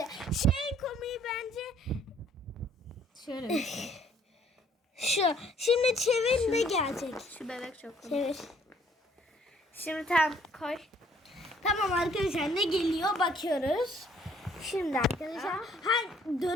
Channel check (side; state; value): both; normal; correlation 0.62